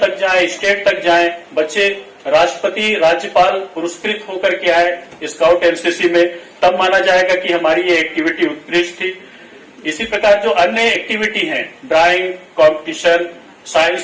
जाएं, स्टेट तक जाएं, बच्चे राष्ट्रपति, राज्यपाल पुरस्कृत होकर के आए स्काउट एनसीसी में, तब माना जाएगा कि हमारी ये एक्टिविटी उत्कृष्ट थी। इसी प्रकार जो अन्य एक्टिविटी हैं, ड्राइंग कॉम्पिटिशन,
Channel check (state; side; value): identical; both; correlation 1.00